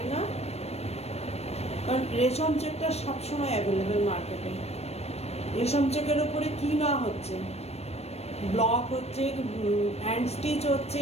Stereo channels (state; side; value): late; right; 0.31 ms